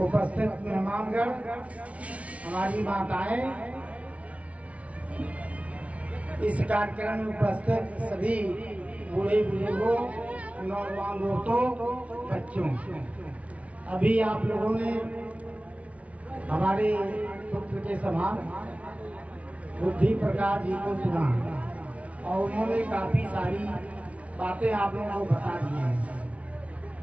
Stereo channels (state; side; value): late; left; 0.065 ms